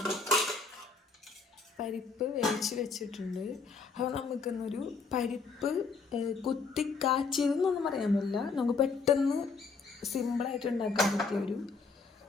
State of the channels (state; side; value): quieter; right; 4.7 dB